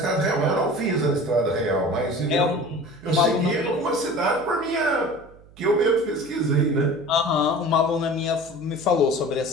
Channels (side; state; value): right; noise; hum, 24 dB below the sound